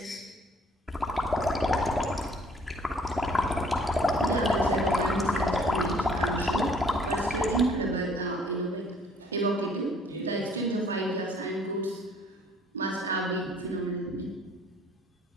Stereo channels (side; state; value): both; normal; correlation 0.59